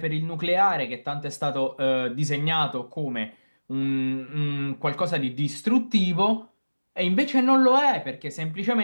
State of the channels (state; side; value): inverted; both; correlation -1.00